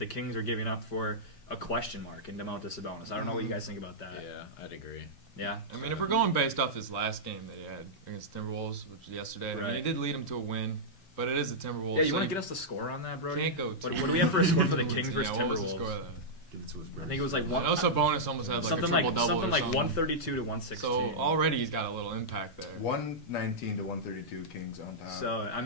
Kings are giving up for a question mark in Domantas Sabonis. I don't know what you guys think about that. Yeah, I'd agree. Yeah. I mean, if we're going based off his last game that he had against Timberwolves, which was yesterday, I mean, he did lead him to a win, but it is the Timberwolves. Yeah, you want to get us the score on that, Brody? Can't go. What do we have for a score for the Kings versus What was the Timberwolves? score then? Give it to us, I think it was like I know Sabonis almost had like something a like triple-double something or like something. 132 to 116. So already he's got a little impact there. 119 to 132 Kings on top. So I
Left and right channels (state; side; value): late; right; 5.2 ms